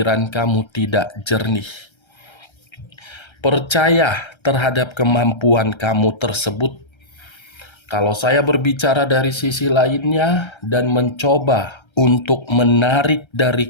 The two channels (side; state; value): right; late; 1.3 ms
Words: kamu tidak jernih. Percaya terhadap kemampuan kamu tersebut. Kalau saya berbicara dari sisi lainnya dan mencoba untuk menarik